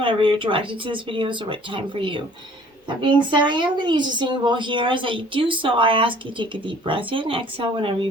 you're directed to this video is the right time for you. That being said, I am going to use a singing bowl here. As I do so, I ask you to take a deep breath in, exhale whenever you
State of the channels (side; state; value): both; normal; correlation 0.53